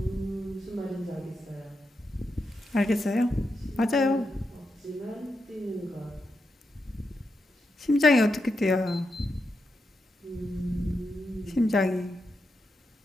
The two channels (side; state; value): both; normal; correlation 0.86